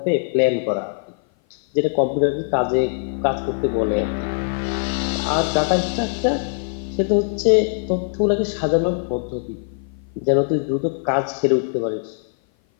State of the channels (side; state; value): right; silent; 56 dB below the other